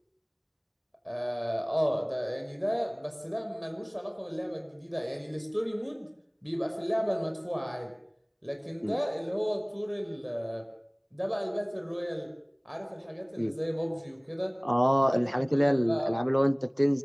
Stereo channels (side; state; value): both; identical; correlation 1.00